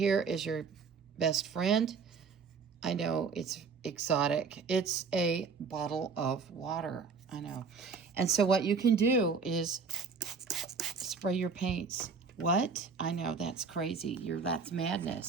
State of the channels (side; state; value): left; quieter; 5.2 dB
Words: is your best friend. I know it's exotic. It's a bottle of water. I know. And so what you can do is spray your paints. What? I know, that's crazy. That's